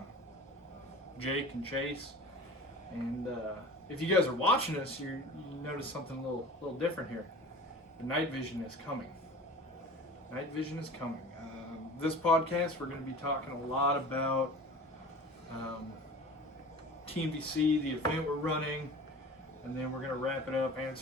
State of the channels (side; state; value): both; normal; correlation 0.38